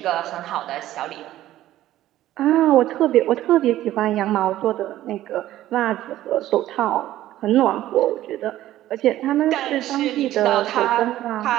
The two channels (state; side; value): quieter; left; 14.0 dB